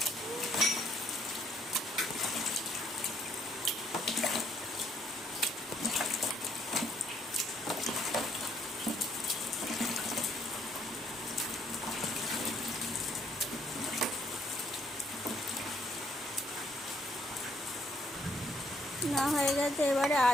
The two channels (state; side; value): normal; both; correlation 0.69